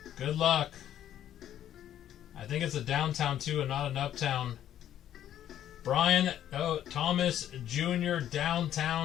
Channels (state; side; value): quieter; right; 11.1 dB